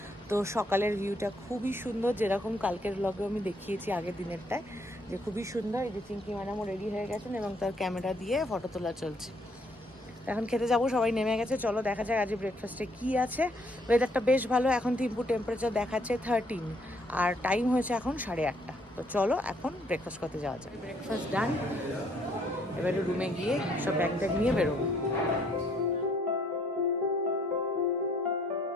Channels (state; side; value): normal; both; correlation 0.67